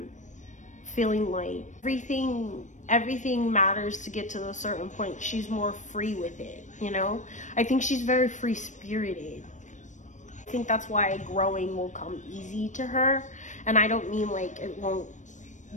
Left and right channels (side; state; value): right; late; 0.35 ms